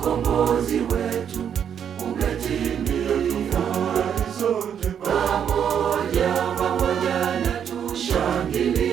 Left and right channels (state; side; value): quieter; left; 8.4 dB